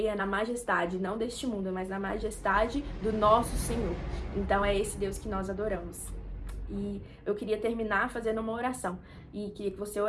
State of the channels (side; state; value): both; identical; correlation 1.00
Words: na majestade, não deste mundo, mas na majestade do nosso Senhor. Então é esse Deus que nós adoramos. E eu queria terminar fazendo uma oração e queria que você